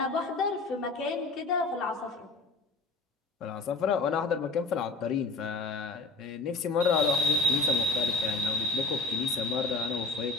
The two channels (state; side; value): quieter; right; 3.6 dB